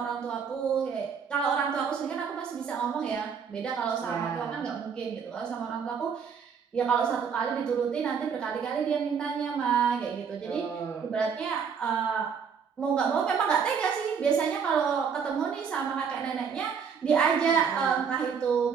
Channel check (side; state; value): left; quieter; 6.6 dB